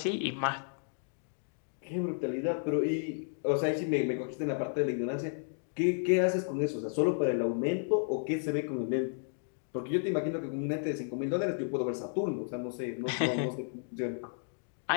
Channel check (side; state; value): right; silent; digital silence